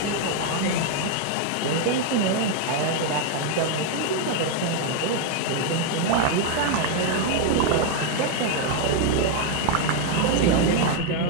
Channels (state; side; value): different; both; correlation 0.01